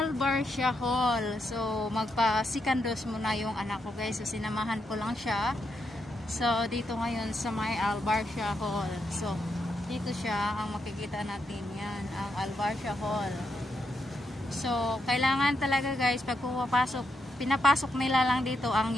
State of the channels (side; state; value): both; normal; correlation 0.82